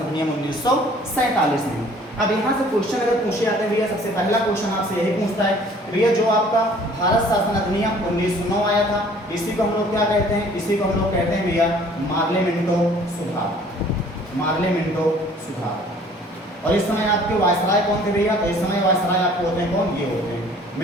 अधिनियम 1947 में। अब यहाँ से क्वेश्चन अगर पूछे जाते हैं भैया, सबसे पहला क्वेश्चन आपसे यही पूछता है भैया जो आपका भारत शासन अधिनियम 1909 आया था, इसी को हम लोग क्या कहते हैं, इसी को हम लोग कहते हैं भैया मार्ले मिंटो सुधार, मार्ले मिंटो सुधार। और इस समय आपके वायसराय कौन थे भैया, तो इस समय वायसराय आपको होते हैं कौन, ये होते हैं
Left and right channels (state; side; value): normal; both; correlation 0.54